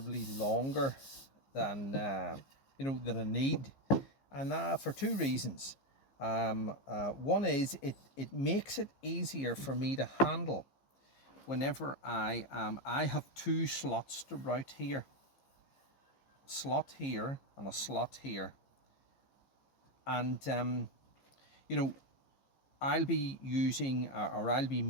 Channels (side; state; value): right; late; 15 ms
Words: longer than than I need, and for two reasons. One is it makes it easier for me to handle whenever I have two slots to route here, a slot here and a slot here, and I'll be using or I'll be